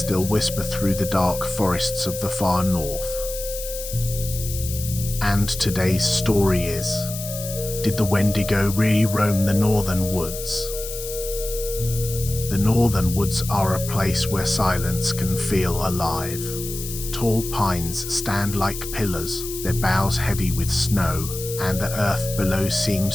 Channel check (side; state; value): left; noise; hiss, 9 dB below the sound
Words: whisper through the dark forests of the far north? And today's story is, did the Wendigo really roam the northern woods? The northern woods are a place where silence can feel alive. Tall pines stand like pillars, their boughs heavy with snow, and the earth below